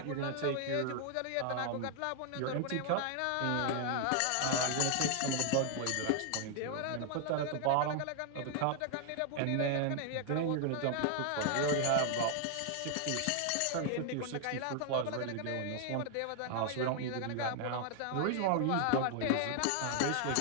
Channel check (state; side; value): different; both; correlation 0.00